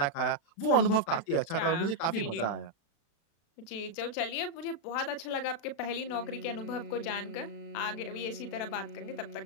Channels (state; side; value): late; right; 36 ms